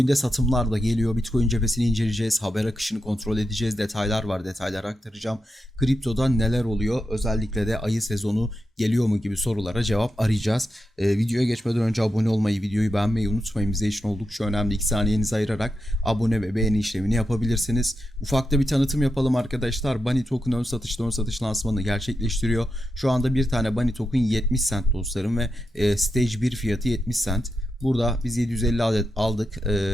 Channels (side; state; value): both; normal; correlation 0.87